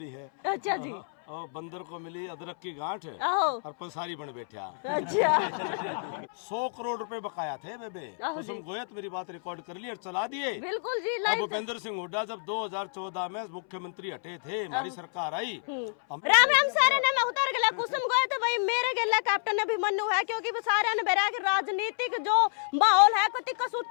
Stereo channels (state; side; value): silent; right; 58 dB below the other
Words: है। अच्छा जी। और बंदर को मिली अदरक की गांठ आहो। और पसारी बन बैठा। अच्छा 100 करोड़ रुपए बकाया थे बेबे। कुसुम गोयत मेरी बात रिकॉर्ड कर ली और चला दिए। बिल्कुल जी। अब भूपेंद्र सिंह हुड्डा जब 2014 में मुख्यमंत्री हटे थे, हमारी सरकार आई। राम राम सारे ने मैं उतर गया कुसुम गए तो भाई मेरे गेला कैप्टन अभिमन्यु है, क्योंकि वो सारे ने बेरा के राजनीतिक जो माहौल है कति